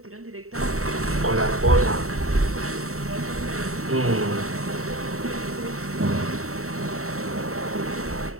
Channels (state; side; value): late; left; 0.64 ms